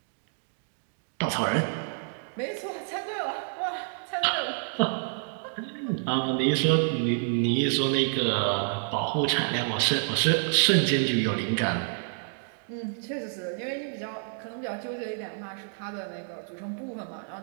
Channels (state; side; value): silent; left; digital silence